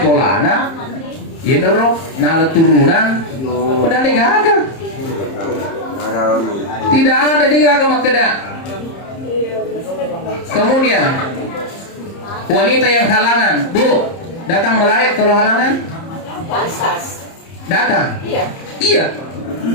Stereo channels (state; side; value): late; right; 30 ms